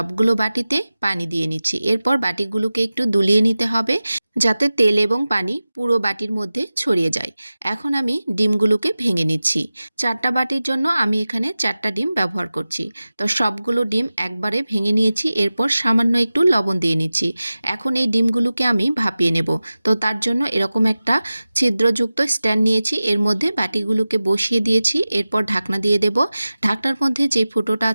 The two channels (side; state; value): both; inverted; correlation -0.96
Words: বাটিতে পানি দিয়ে নিচ্ছি। এরপর বাটিগুলোকে একটু দুলিয়ে নিতে হবে যাতে তেল এবং পানি পুরো বাটির মধ্যে ছড়িয়ে যায়। এখন আমি ডিমগুলোকে ভেঙে নিচ্ছি। 4টা বাটির জন্য আমি এখানে 4টা ডিম ব্যবহার করছি। তো সবগুলো ডিম একবারে ভেঙে নিয়েছি। এরপর সামান্য একটু লবণ দিয়ে নিচ্ছি। এখন এই ডিমগুলোকে আমি ভাপিয়ে নেব। তো তার জন্য এরকম একটা ছিদ্রযুক্ত স্ট্যান্ড নিয়েছি। এর মধ্যে বাটিগুলোকে বসিয়ে দিয়েছি। এরপর ঢাকনা দিয়ে দেব। ঢাকনার মধ্যে যে ফুটোটা